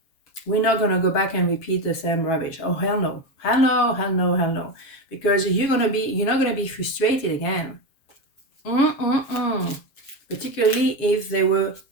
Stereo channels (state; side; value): late; right; 7.3 ms